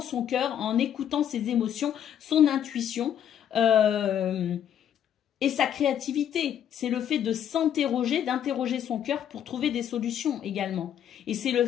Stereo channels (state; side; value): quieter; right; 9.7 dB